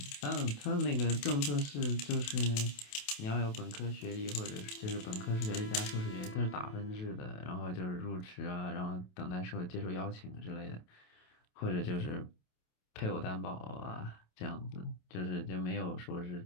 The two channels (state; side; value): late; right; 28 ms